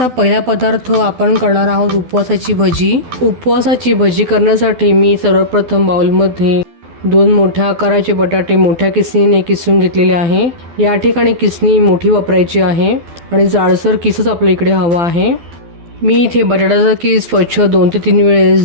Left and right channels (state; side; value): late; left; 12 ms